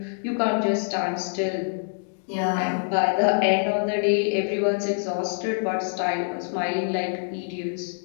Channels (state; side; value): silent; right; 62 dB below the other